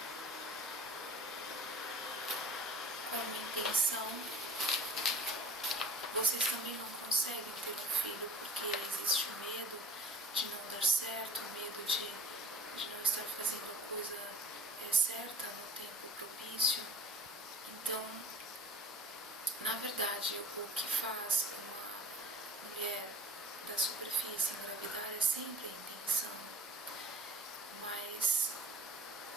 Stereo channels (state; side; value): normal; both; correlation 0.41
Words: uma intenção, vocês também não conseguem ter um filho porque existe o medo de não dar certo, o medo de não estar fazendo a coisa certa no tempo propício. Então, na verdade, o que faz uma mulher da superfície engravidar é sempre a intenção, mas